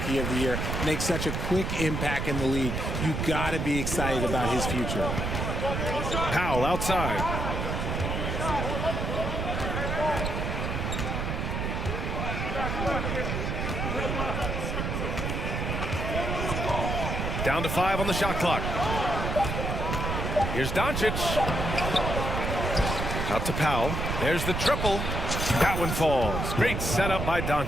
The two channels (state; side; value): noise; right; rumble, 2 dB below the sound